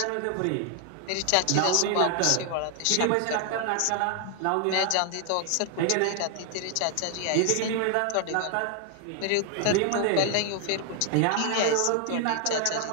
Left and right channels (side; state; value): both; different; correlation 0.00